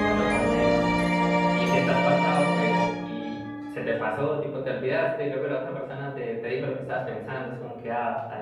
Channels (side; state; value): both; identical; correlation 1.00